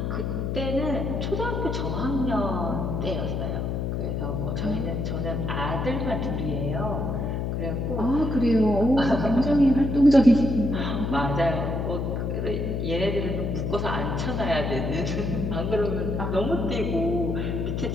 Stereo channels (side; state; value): left; noise; hum, 1 dB below the sound